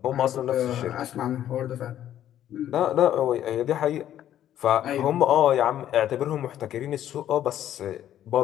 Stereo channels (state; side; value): quieter; right; 11.4 dB